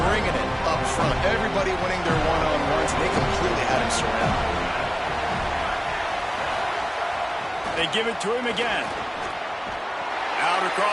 bringing it up front. Everybody winning their one-on-ones, and they completely had him surrounded. They give it to him again. Out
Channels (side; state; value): both; identical; correlation 1.00